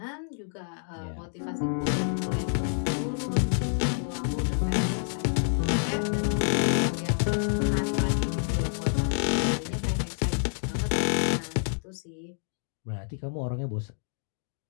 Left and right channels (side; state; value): right; silent; digital silence